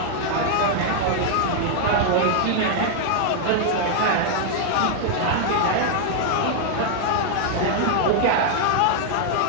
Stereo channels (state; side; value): different; both; correlation 0.00